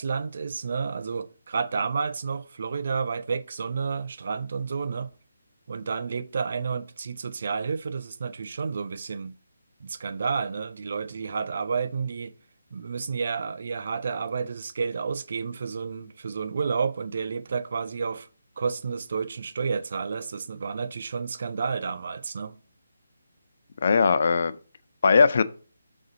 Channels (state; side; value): inverted; both; correlation -0.83